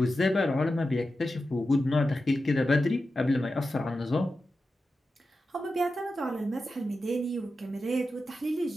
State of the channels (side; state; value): both; normal; correlation 0.91